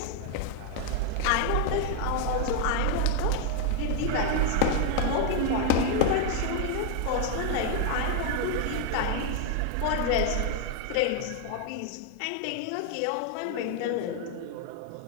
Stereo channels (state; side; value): different; both; correlation 0.00